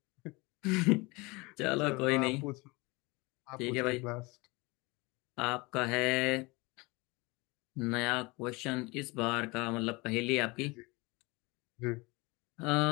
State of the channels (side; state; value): right; quieter; 25.3 dB